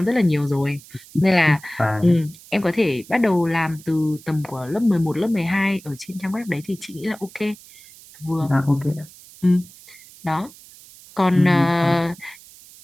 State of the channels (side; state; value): right; noise; hiss, 22 dB below the sound